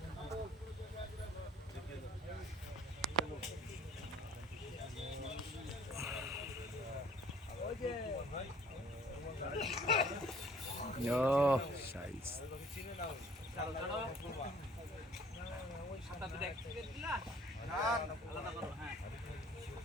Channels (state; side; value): normal; both; correlation 0.55